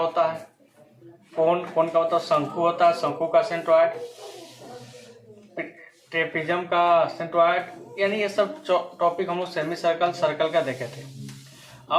है, कौन का होता है, शंकु होता है, शंकु का सेंट्रॉयड, ट्रेपेजियम का सेंट्रॉयड, यानी ये सब टॉपिक हम लोग सेमी सर्कल सर्कल का देखे थे।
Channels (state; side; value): identical; both; correlation 1.00